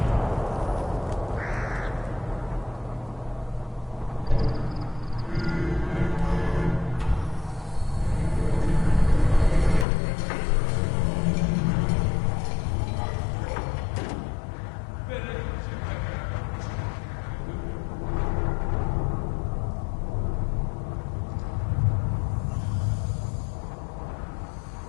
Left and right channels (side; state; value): right; drops out; at 9.9 s